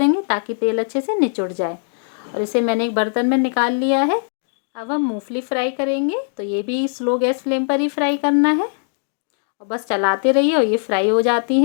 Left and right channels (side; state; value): right; silent; digital silence